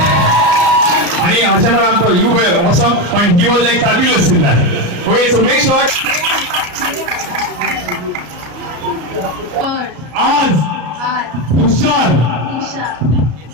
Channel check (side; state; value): left; late; 34 ms